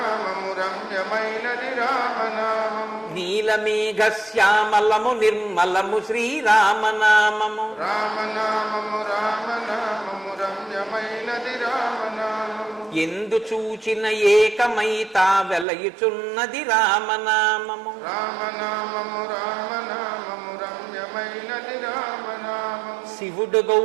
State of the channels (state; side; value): drops out; left; at 15.7 s